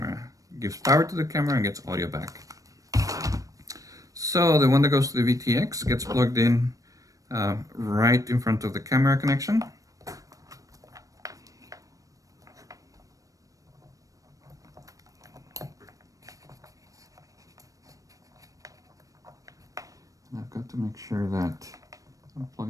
Gives power to the camera and gets audio back. So the one that goes to the VTX gets plugged in right in front of the camera connection. And I've got to make sure that I'm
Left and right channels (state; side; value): late; left; 0.16 ms